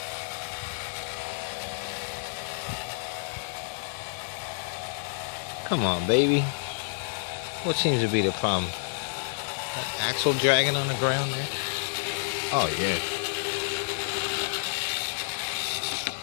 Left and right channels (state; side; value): silent; right; 56 dB below the other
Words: Come on, baby. What seems to be the problem? Axle dragging on the ground there? Oh, yeah.